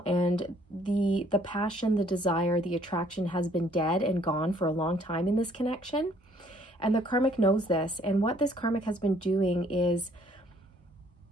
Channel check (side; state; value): both; normal; correlation 0.62